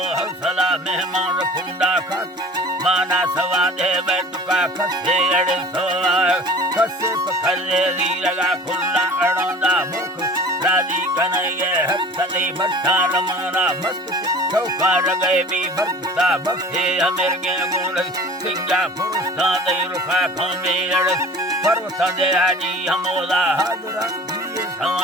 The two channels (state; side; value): normal; both; correlation 0.42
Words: हौसला मेहमान कुंडा खात माना सवा दे बैठका खसे अड़ सोआ खसे पखले दी लगा खुला अड़ोंदा मुख राजी कन्हैया हक सदी भट्टा रमाना मस्त चौकार गए भी भक्ता भक्ते अमीर के गुण सिंगा पुरुषा दे रुखा खमे अड़ पर्वत दे हाजी हमोला हाजरा दिए